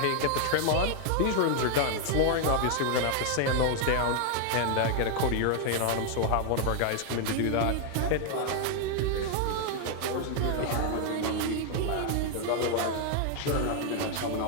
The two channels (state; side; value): different; both; correlation 0.00